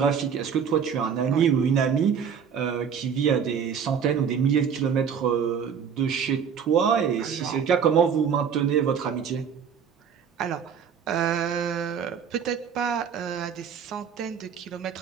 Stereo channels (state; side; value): quieter; left; 7.3 dB